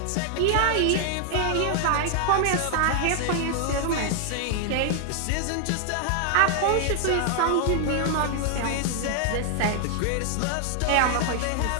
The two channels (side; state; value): both; different; correlation 0.00